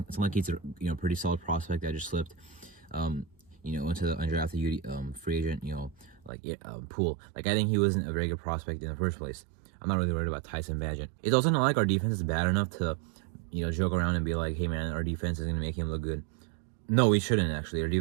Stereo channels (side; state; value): left; drops out; at 6.3 s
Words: It's not like he's a pretty solid prospect that just slipped, into the undrafted free agent, pool. I think he wasn't a very good prospect in the first place. I'm not really worried about Tyson Bagent. It's also not like our defense is bad enough to, joke around and be like, hey man, our defense is gonna make him look good. No, we shouldn't actually. Our